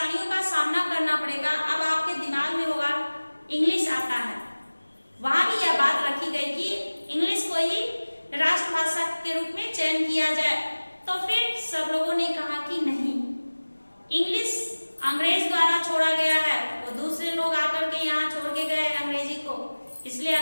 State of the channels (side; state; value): both; inverted; correlation -1.00